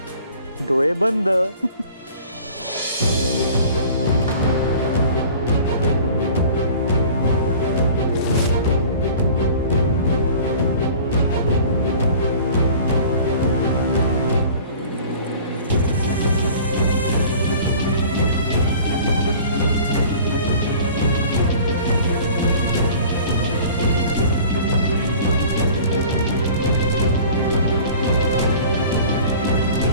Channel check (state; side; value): inverted; both; correlation -0.45